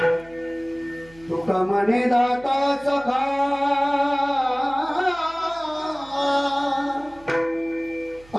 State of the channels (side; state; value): right; noise; hum, 25 dB below the sound